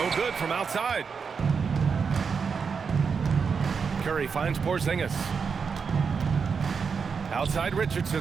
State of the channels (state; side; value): quieter; left; 5.8 dB